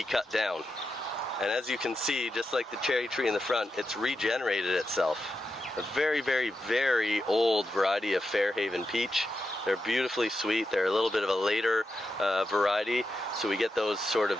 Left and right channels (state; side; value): normal; both; correlation 0.88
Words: cut down. And as you can see, just like the cherry tree in the front, it's regenerated itself. A very, very, very old variety of Fairhaven peach. They're beautifully sweet. They're a little bit of a later variety, so we get those sort